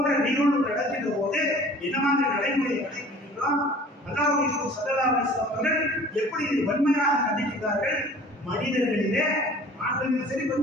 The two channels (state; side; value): normal; both; correlation 0.47